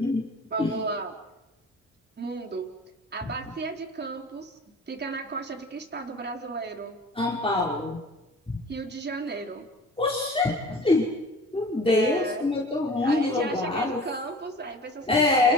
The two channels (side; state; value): both; normal; correlation 0.42